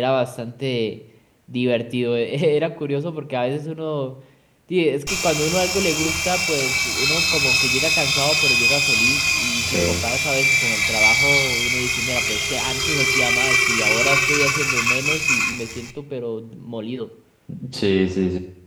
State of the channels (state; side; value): identical; both; correlation 1.00